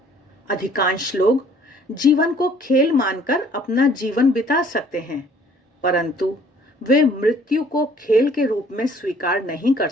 अधिकांश लोग जीवन को खेल मानकर अपना जीवन बिता सकते हैं, परंतु वे मृत्यु को खेल के रूप में स्वीकार नहीं कर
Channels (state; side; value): normal; both; correlation 0.57